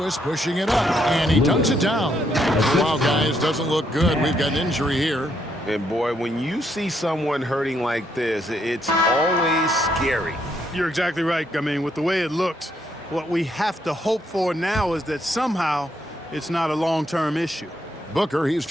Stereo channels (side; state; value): both; normal; correlation 0.75